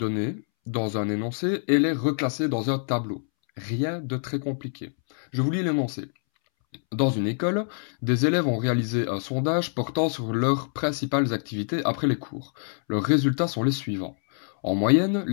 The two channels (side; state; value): right; silent; 61 dB below the other